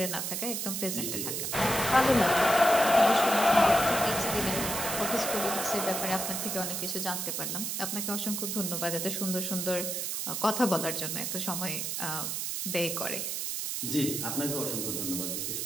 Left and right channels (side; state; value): right; noise; hiss, 2 dB below the sound